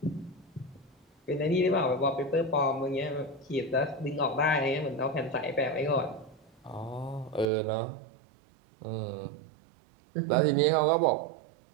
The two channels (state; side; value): drops out; left; at 7.5 s